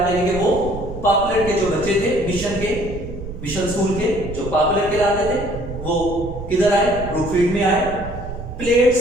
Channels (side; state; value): right; noise; rumble, 10 dB below the sound